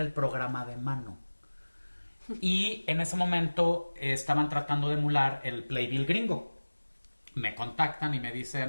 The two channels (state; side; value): inverted; both; correlation -1.00